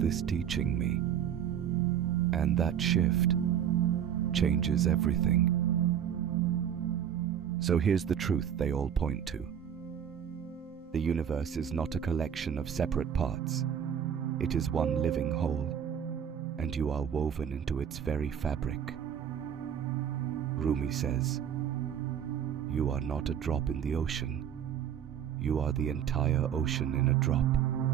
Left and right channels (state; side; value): quieter; left; 9.0 dB